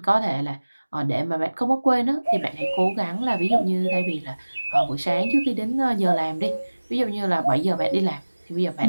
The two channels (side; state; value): both; inverted; correlation -1.00